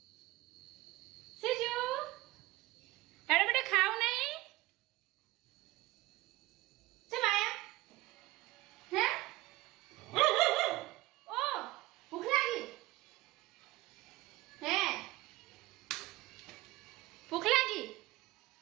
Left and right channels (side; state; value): left; quieter; 19.1 dB